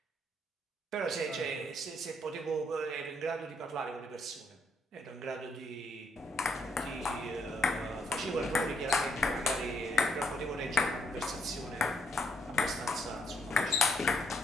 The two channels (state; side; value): normal; both; correlation 0.72